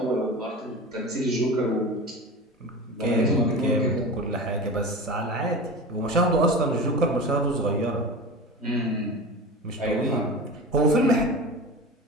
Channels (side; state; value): both; normal; correlation 0.31